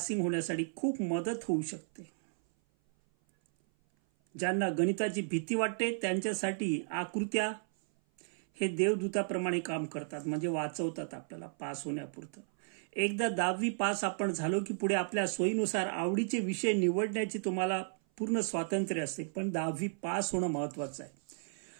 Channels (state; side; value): silent; left; 55 dB below the other